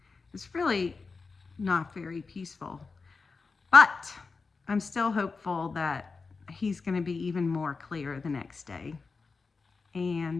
it's really not very peaceful. But I'm still hopeful that he's going to be even more clear the next day.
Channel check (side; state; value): right; quieter; 4.4 dB